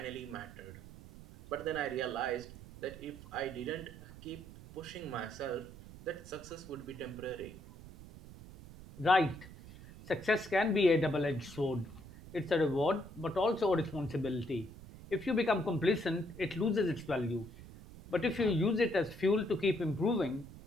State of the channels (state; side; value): noise; right; rumble, 16 dB below the sound